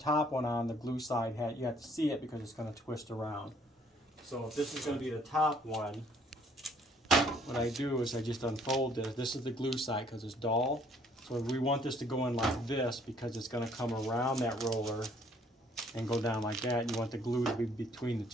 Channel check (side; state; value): both; normal; correlation 0.62